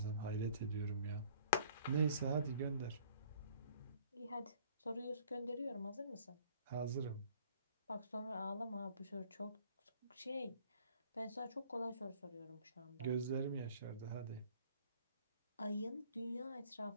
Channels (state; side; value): inverted; both; correlation -0.56